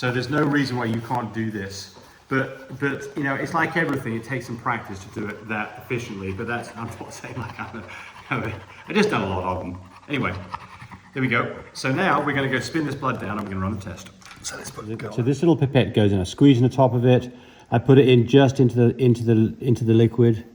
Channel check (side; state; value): both; identical; correlation 1.00